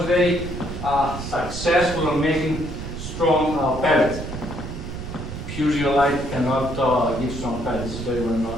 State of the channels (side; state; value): right; noise; rumble, 8 dB below the sound